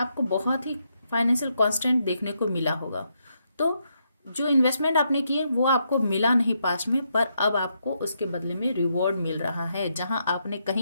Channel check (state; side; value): inverted; both; correlation -0.79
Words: बहुत ही फाइनेंशियल कांस्टेंट देखने को मिला होगा। तो जो इन्वेस्टमेंट आपने किए वो आपको मिला नहीं पास्ट में, पर अब आपको उसके बदले में रिवॉर्ड मिल रहा है। जहां आपने